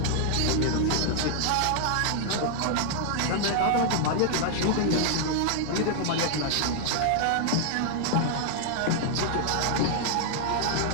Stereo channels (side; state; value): both; different; correlation 0.00